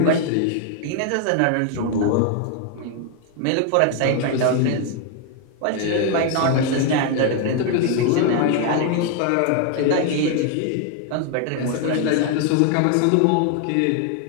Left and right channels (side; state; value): both; different; correlation 0.01